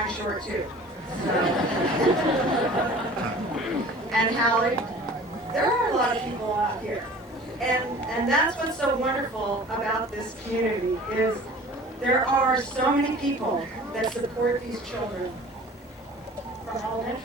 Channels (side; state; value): both; normal; correlation 0.44